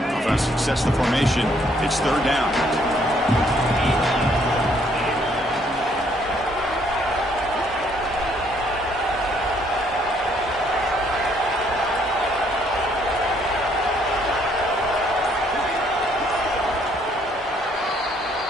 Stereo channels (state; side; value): normal; both; correlation 0.67